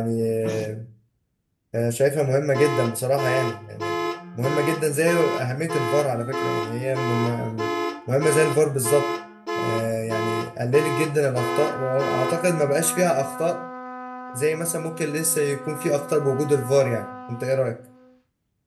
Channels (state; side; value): identical; both; correlation 1.00